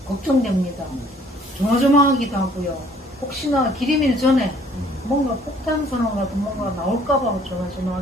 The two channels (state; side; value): normal; both; correlation 0.59